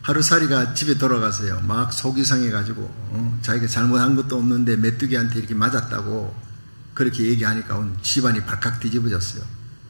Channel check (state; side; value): inverted; both; correlation -1.00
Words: 하루살이가 집에 돌아가서요. 막 속이 상해가지고 자기가 잘못한 것도 없는데 메뚜기한테 이렇게 맞았다고 그렇게 얘기하니까 집안이 발칵 뒤집어졌어요.